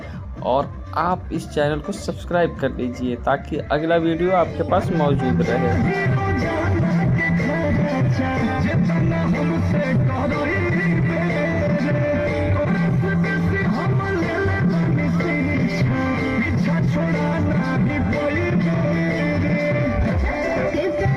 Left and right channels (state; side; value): identical; both; correlation 1.00